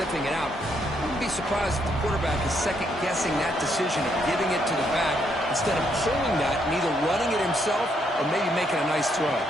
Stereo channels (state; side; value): normal; both; correlation 0.74